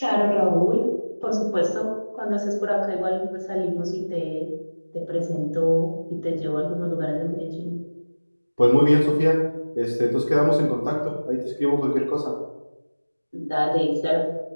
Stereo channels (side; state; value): both; inverted; correlation -1.00